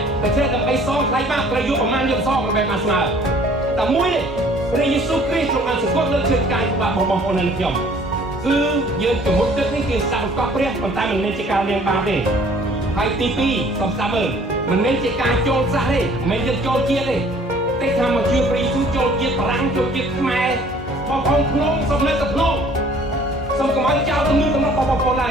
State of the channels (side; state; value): both; normal; correlation 0.55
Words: តែចេះដើម្បីសងថ្លៃបាបត្រូវយកប្រមាណយកសងដើម្បីបានស្មើតែមួយនេះព្រះយេស៊ូវគ្រីស្ទទ្រង់បានសង្កត់លើឈើឆ្កាងបាបរបស់បងប្អូននៅខ្ញុំគឺយើងជំនុំទឹកនេះគឺស្ដាប់បង្កប់ព្រះប៉ុន្តែមិនមែនជាការលៀងបាបទេហើយទី2សូមស្ដាប់មើលមិនមែនជាការចូលសាសទេមិនមែនយើងចូលជាតិទេតែថាមកជឿព្រះយេស៊ូវចូលជាតិបារាំងចូលជាតិខ្មែរបងប្អូនក្នុងសូមនៅតែក្នុងសូមកុំឲ្យចោលទំនៀមទម្លាប់បងប្អូនឡើ